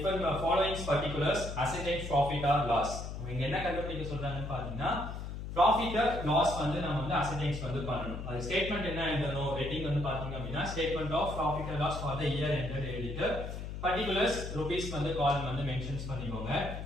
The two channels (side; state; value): left; noise; hum, 7 dB below the sound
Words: following particulars ascertain profit or loss. இங்க என்ன கண்டுபிடிக்க சொல்றாங்கன்னு பாத்தீங்கன்னா profit or loss வந்து நம்ம வந்து ascertain வந்து பண்ணனும். அது ஸ்டேட்மென்ட் என்ன எழுதணும் ஹெட்டிங் வந்து பாத்தீங்க அப்படினா statement of profit or loss for the year ended எழுதிட்டு particulars rupees வந்து காலம் வந்து மென்ஷன்ஸ் பண்ணிக்கோங்க.